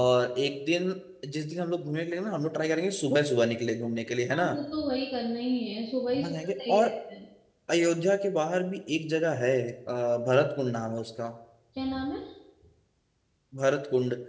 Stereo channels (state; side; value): identical; both; correlation 1.00